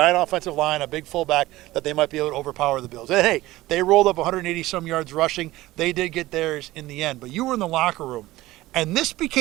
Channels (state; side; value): quieter; left; 17.5 dB